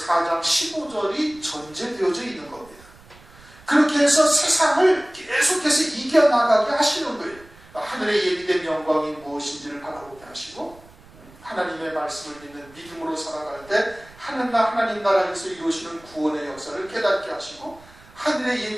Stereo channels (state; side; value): noise; right; rumble, 24 dB below the sound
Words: 4장 15절이 전제되어져 있는 겁니다. 그렇게 해서 세상을 계속해서 이겨나가게 하시는 거예요. 하늘의 예비된 영광이 무엇인지를 바라보게 하시고, 하나님의 말씀을 믿는 믿음으로 살아갈 때 하나님 나라에서 이루시는 구원의 역사를 깨닫게 하시고, 하늘의